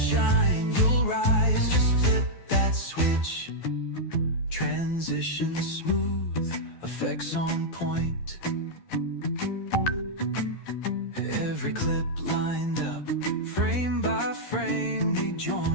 you'll rise. Just flip that switch. Transition smooth, effects on point. Every clip lined up, frame by frame we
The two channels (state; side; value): late; right; 12 ms